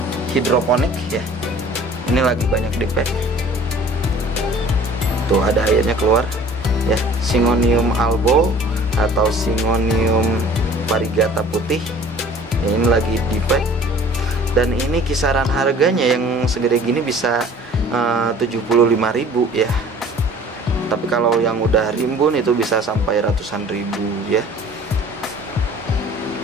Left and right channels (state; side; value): normal; both; correlation 0.49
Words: hidroponik ya. Ini lagi banyak dipek. Tuh ada airnya keluar ya. Syngonium albo atau Syngonium variegata putih ya, ini lagi dipek. Dan ini kisaran harganya yang segede gini bisa 75.000 ya. Tapi kalau yang udah rimbun itu bisa sampai ratusan ribu ya.